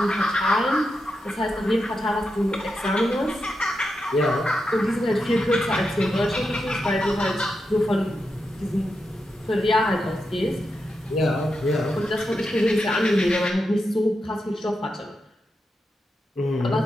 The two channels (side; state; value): both; normal; correlation 0.87